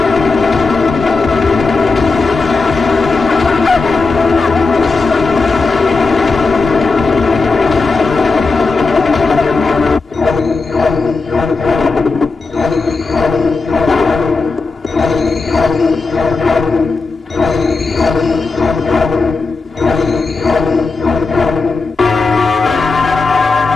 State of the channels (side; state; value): right; quieter; 4.0 dB